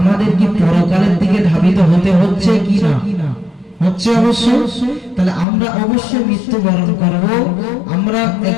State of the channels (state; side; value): drops out; right; at 5.5 s